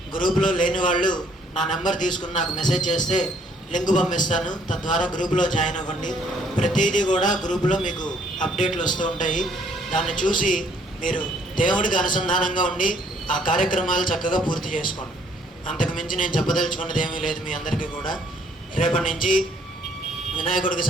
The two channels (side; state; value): both; normal; correlation 0.65